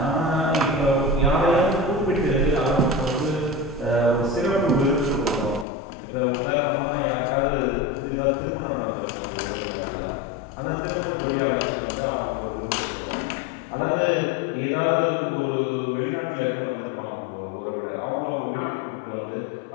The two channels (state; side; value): drops out; right; at 5.7 s